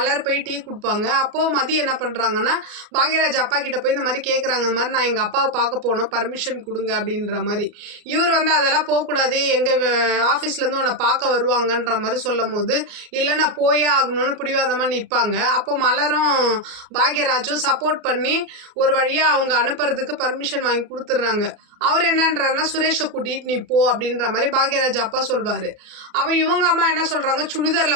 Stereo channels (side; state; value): left; late; 33 ms